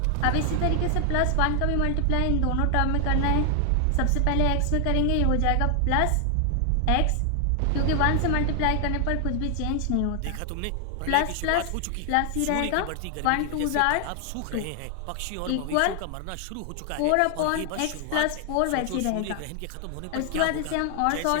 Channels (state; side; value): different; both; correlation 0.00